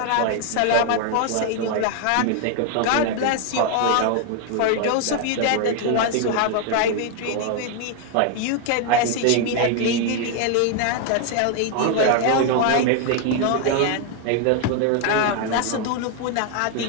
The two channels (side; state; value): both; different; correlation 0.00